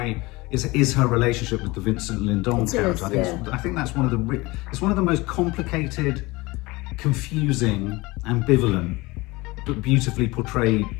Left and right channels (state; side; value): quieter; right; 22.4 dB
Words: is her relationship with the Vincent Lindon character. I think that's one of the it's one of the most complicated, confusing, ambivalent, but beautifully portrayed